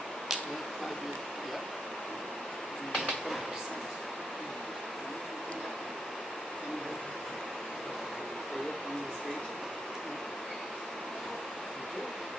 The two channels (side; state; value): both; normal; correlation 0.81